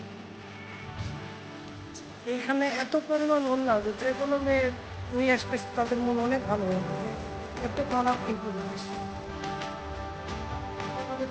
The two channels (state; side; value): identical; both; correlation 1.00